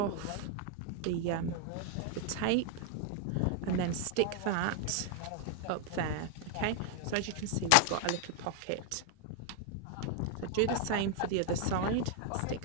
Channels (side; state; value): both; different; correlation 0.00